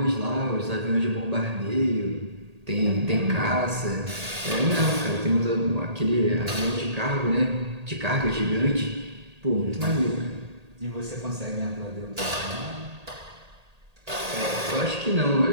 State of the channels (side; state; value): left; late; 1.8 ms